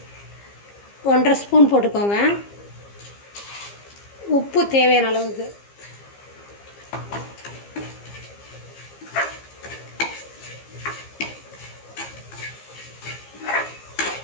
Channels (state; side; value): late; right; 15 ms